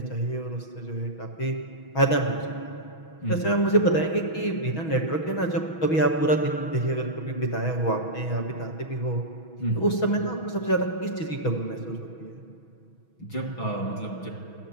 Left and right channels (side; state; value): right; late; 6.2 ms